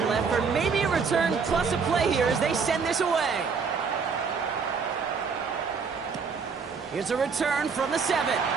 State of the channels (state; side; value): quieter; left; 5.5 dB